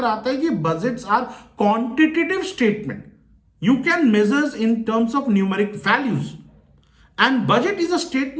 आता है कि budgets are quantitative statement, you can measures in terms of numeric values, and budget is a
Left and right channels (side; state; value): both; identical; correlation 1.00